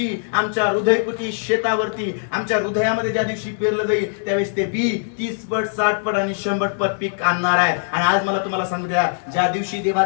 आमच्या हृदयकुटी शेतावरती आमच्या हृदयामध्ये ज्या दिवशी पेरलं जाईल त्यावेळेस ते बी 30 पट 60 पट आणि 100 पट पीक आणणार आहे. आणि आज मला तुम्हाला सांगू द्या, ज्या दिवशी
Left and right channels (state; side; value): silent; right; digital silence